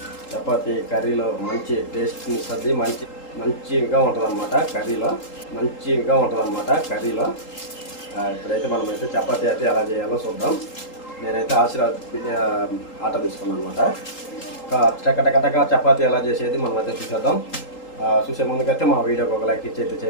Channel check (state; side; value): late; right; 3.8 ms